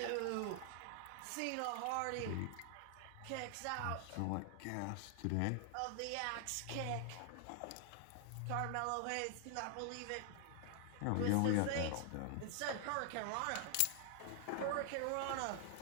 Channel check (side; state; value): both; different; correlation 0.00